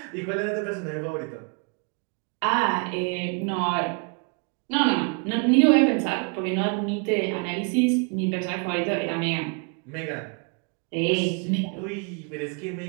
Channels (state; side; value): quieter; left; 36.3 dB